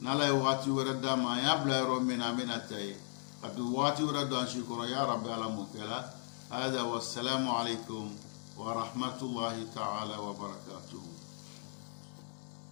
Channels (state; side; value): silent; right; 53 dB below the other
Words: نلا يواتي وردما يا بلا رومين أمي نتاي كبواتي وردان شكرا يا رب العالمين كلا هذا والسلام عليكم ورحمة الله تعالى وبركاته.